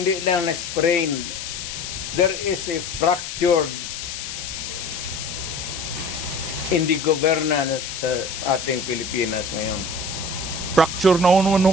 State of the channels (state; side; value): noise; left; hiss, 7 dB below the sound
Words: lang na-sprained. There is a fractured in the governance sa ating Pilipinas ngayon. Fracture na ano